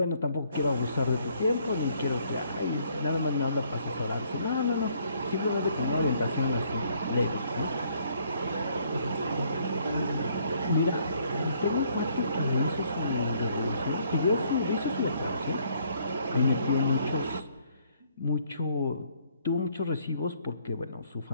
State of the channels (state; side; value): inverted; both; correlation -0.66